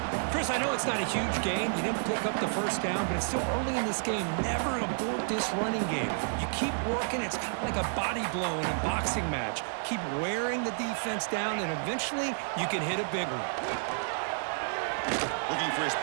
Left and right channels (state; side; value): silent; left; 57 dB below the other